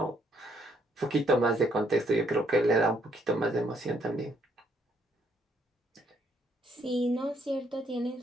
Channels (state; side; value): normal; both; correlation 0.70